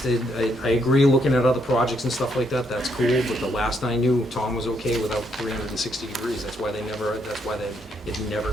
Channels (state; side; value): normal; both; correlation 0.74